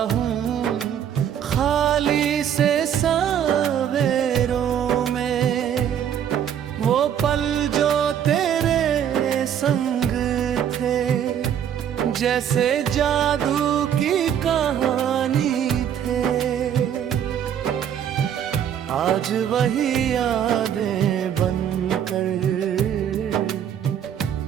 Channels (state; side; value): quieter; left; 9.3 dB